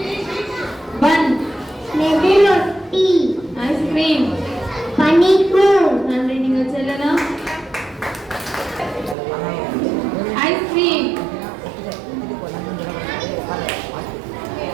பன், மெதுரொட்டி, ஐஸ்கிரீம். பனிக்கூழ், நன்றி. நீங்கள் செல்லலாம். ஐஸ் ஐஸ்கிரீம்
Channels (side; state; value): left; drops out; at 9.2 s